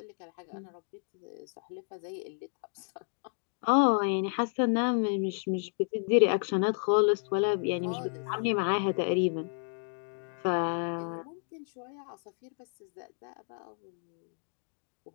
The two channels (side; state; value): right; silent; 57 dB below the other